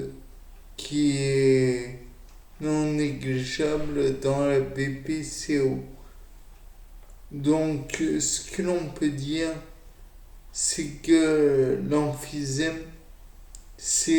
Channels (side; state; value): both; identical; correlation 1.00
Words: qui est non négligeable dans la BPCO. Donc ce que l'on peut dire, c'est que l'emphysème,